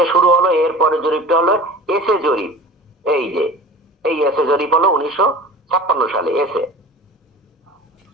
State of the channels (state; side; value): normal; both; correlation 0.38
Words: শুরু হলো, এরপরে জরিপটা হলো এসে জরিপ। এই যে এই এসে জরিপ হলো 1956 সালে এসে